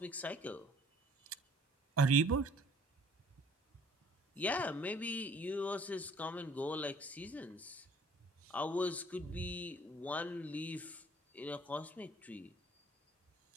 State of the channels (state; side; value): normal; both; correlation 0.56